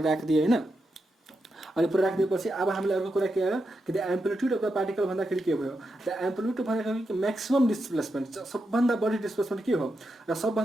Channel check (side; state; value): both; normal; correlation 0.86